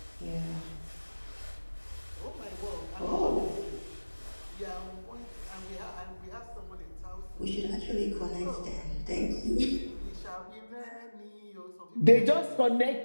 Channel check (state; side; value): inverted; both; correlation -1.00